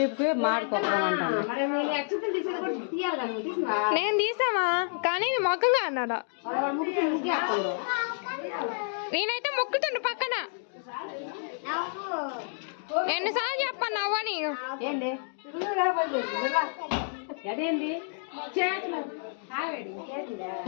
మాడుకోవడం అంటాను. నేను తీసామా కానీ మొక్కగా అన్నాడా. నేనైతే మొక్కుతుండు పక్కన. ఎన్నిసార్లు చెప్పాను నవ్వని. అదేంటి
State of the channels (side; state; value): right; silent; digital silence